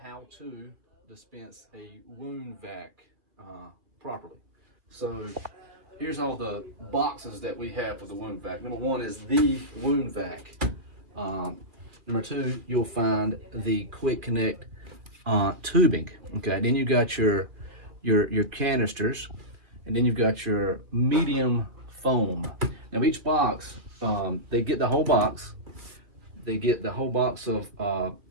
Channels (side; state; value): left; late; 2.5 ms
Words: how to dispense a wound vac properly. So here's all the boxes that we have for the wound vac. Number one is the wound vac. Number two, you'll find the quick connect tubing. Okay, then you got your canisters, and then you've got your medium foam. Now each box, they get the whole box. They get the whole box of